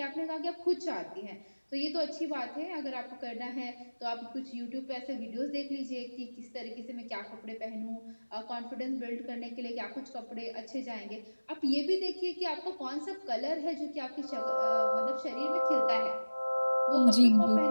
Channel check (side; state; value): both; inverted; correlation -1.00